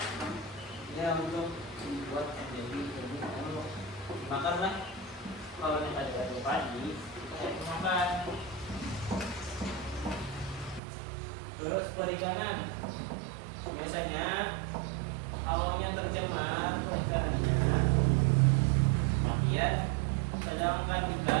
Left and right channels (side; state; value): left; drops out; at 10.8 s